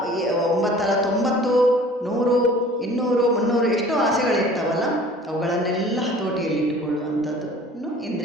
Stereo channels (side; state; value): both; normal; correlation 0.48